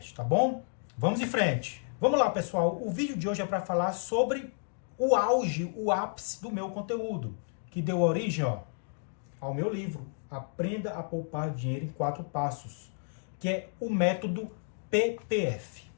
tá bom? Vamos em frente. Vamos lá pessoal, o vídeo de hoje é para falar sobre o auge, o ápice do meu conteúdo, que deu origem, ao meu livro, Aprenda a Poupar Dinheiro em 4 Passos, que é o método PPF.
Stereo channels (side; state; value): right; silent; digital silence